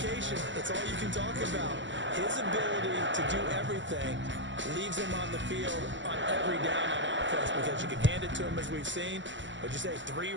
that's all you can talk about. His ability to do everything leaves him on the field on every down on offense because you can hand it to him as we've seen. But you say 3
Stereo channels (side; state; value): left; late; 0.54 ms